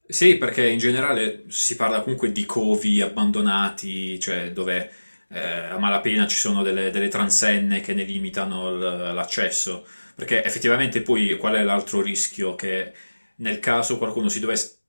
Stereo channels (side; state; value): both; inverted; correlation -1.00